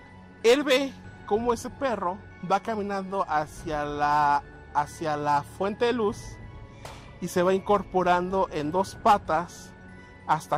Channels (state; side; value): identical; both; correlation 1.00